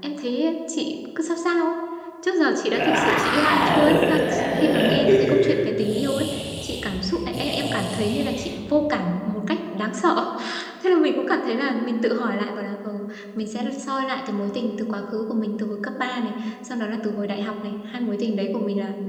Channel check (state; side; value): identical; both; correlation 1.00